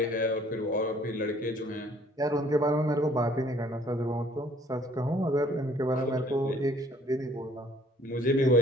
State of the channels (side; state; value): both; normal; correlation 0.57